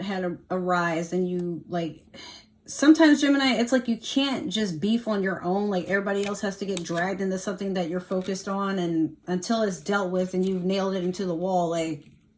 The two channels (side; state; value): both; identical; correlation 1.00